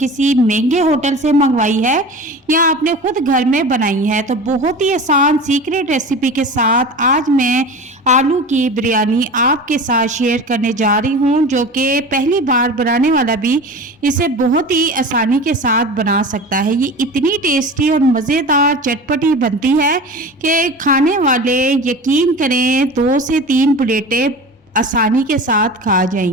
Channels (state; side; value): normal; both; correlation 0.34